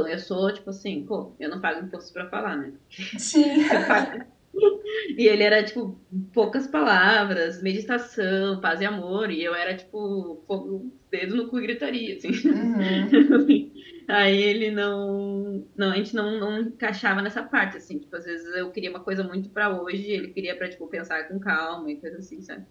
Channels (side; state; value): both; identical; correlation 1.00